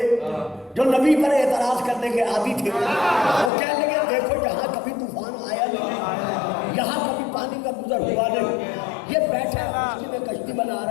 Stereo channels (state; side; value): drops out; right; at 3.5 s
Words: جو نبی پر اعتراض کرنے کے عادی تھے, وہ کہنے لگے دیکھو یہاں کبھی طوفان آیا نہیں, یہاں کبھی پانی کا گزر ہوا نہیں, یہ بیٹھا ہے کشتی میں کشتی بنا